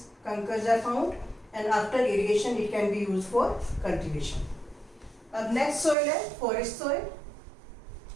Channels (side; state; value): left; drops out; at 6.0 s